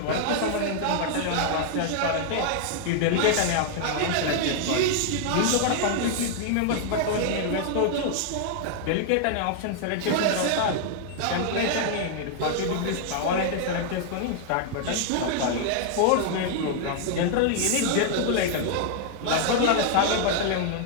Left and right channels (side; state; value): both; different; correlation 0.00